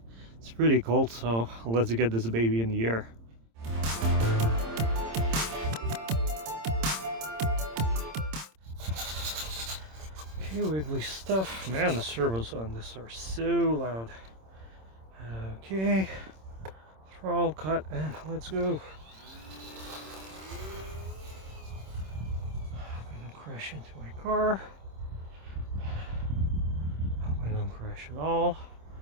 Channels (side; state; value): left; late; 26 ms